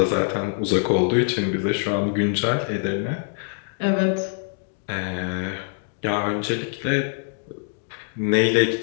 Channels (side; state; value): right; silent; 63 dB below the other